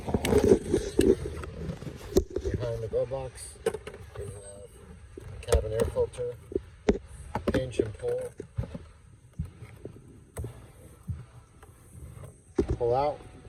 behind the glove box, we have a cabin air filter, pinch and pull out,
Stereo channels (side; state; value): both; identical; correlation 1.00